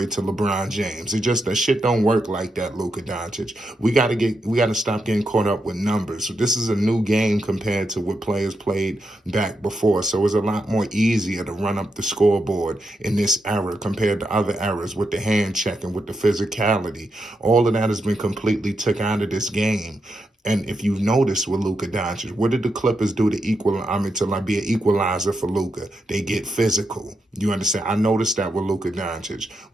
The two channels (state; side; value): normal; both; correlation 0.84